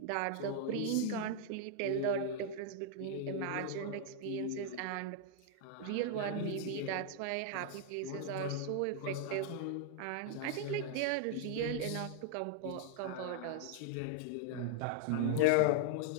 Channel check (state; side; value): different; both; correlation -0.01